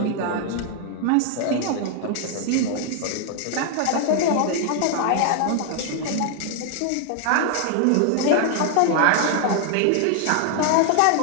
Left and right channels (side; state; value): both; different; correlation 0.00